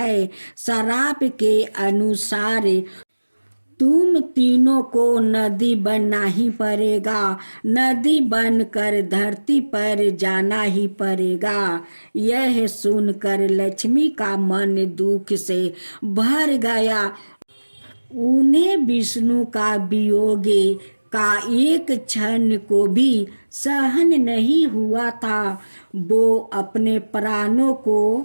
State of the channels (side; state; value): both; inverted; correlation -1.00